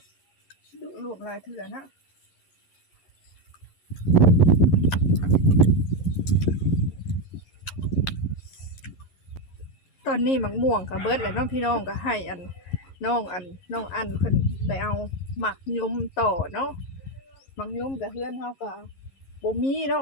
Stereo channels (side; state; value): right; late; 11 ms